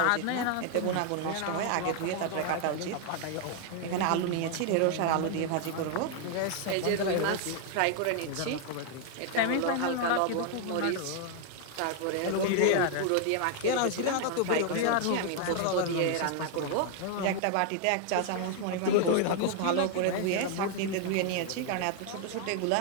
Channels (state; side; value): different; both; correlation 0.00